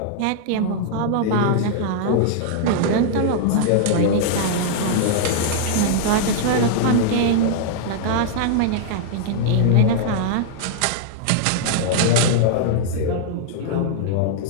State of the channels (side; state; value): both; different; correlation -0.01